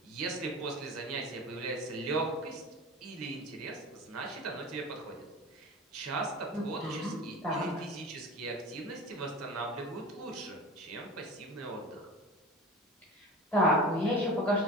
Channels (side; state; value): both; normal; correlation 0.34